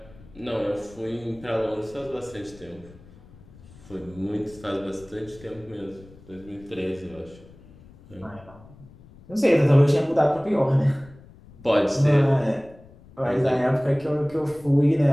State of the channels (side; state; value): left; noise; rumble, 23 dB below the sound